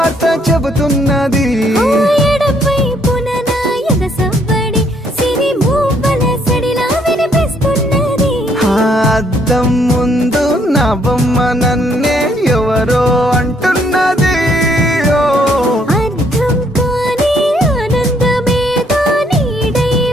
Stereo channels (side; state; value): both; normal; correlation 0.68